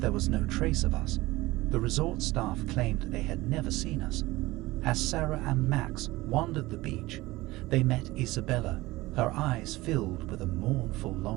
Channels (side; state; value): left; quieter; 19.5 dB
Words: was no trace of us. The resort staff claimed they had never seen us. As Sarah and Max wandered the beach, they met Isabella, her eyes filled with a mournful